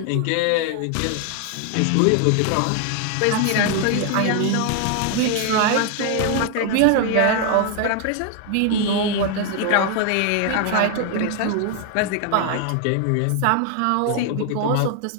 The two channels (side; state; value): both; different; correlation 0.00